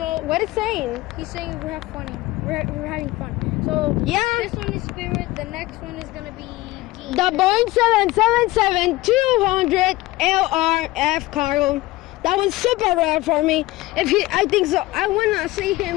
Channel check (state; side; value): quieter; right; 18.9 dB